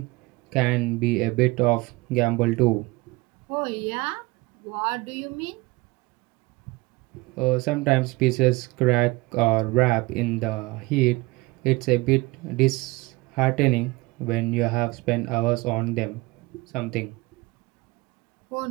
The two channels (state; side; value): quieter; left; 22.8 dB